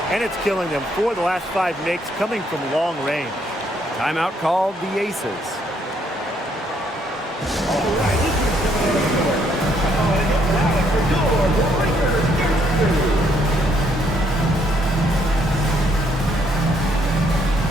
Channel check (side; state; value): both; normal; correlation 0.70